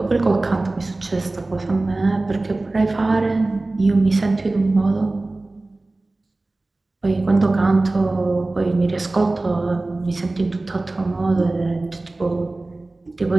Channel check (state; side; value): quieter; left; 3.0 dB